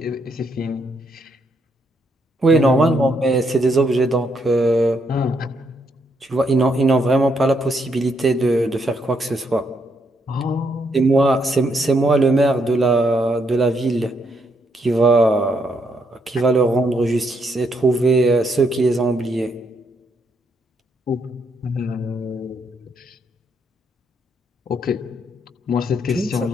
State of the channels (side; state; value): both; normal; correlation 0.75